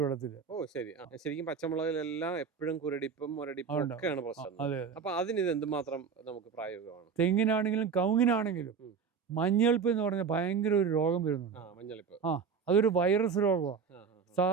വെള്ളത്തിൽ. ഓ ശരി. ശരിക്കും പച്ചമുളകിലെല്ലാം എപ്പോഴും കുരടിപ്പും മുരടിപ്പും ഒക്കെയാണ് പ്രശ്നം. അപ്പൊ അതിന് ഇത് എന്തുമാത്രം നമുക്ക് പ്രായോഗികമാണ്? തെങ്ങിനാണെങ്കിലും കവുങ്ങിനാണെങ്കിലും മഞ്ഞളിപ്പ് എന്ന് പറഞ്ഞാൽ ഭയങ്കര ഒരു രോഗം വരുന്നുണ്ട്. മഞ്ഞളിപ്പ് അതൊരു വൈറസ് രോഗമാണ്.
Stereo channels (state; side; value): quieter; left; 6.1 dB